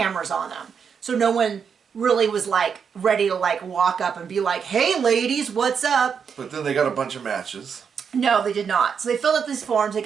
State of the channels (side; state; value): left; quieter; 6.7 dB